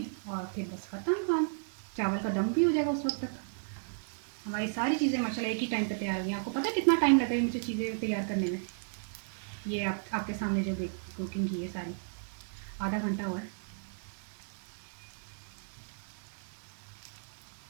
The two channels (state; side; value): silent; left; digital silence